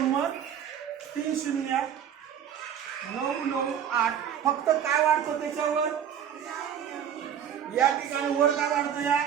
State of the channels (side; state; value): left; quieter; 9.0 dB